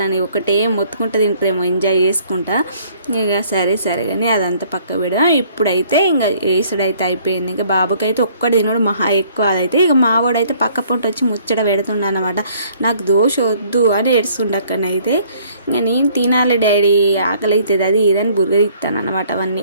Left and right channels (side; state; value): both; inverted; correlation -0.60